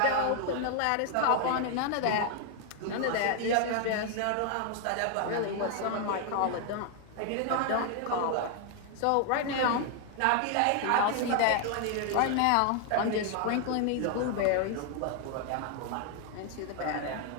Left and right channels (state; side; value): different; both; correlation 0.00